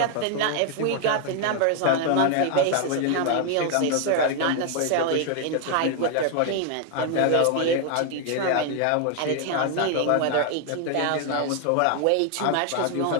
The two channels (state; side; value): different; both; correlation 0.00